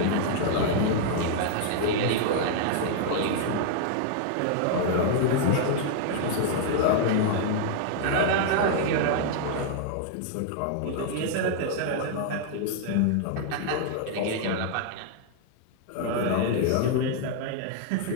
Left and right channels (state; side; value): different; both; correlation -0.01